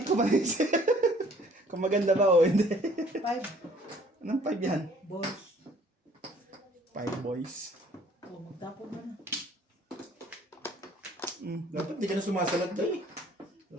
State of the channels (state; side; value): normal; both; correlation 0.57